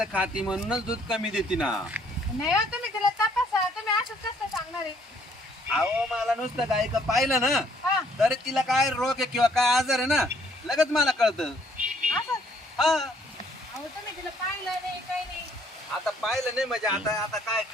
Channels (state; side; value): normal; both; correlation 0.64